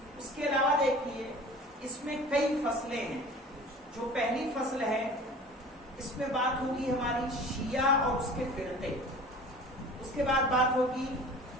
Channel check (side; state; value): both; normal; correlation 0.42